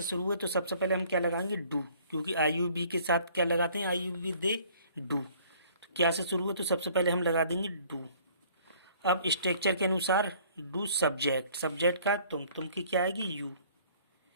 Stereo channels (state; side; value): inverted; both; correlation -0.56